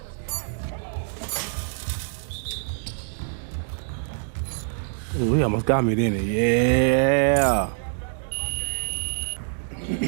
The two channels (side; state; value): left; silent; 61 dB below the other